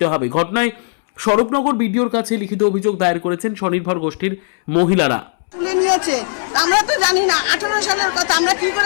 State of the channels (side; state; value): right; silent; 68 dB below the other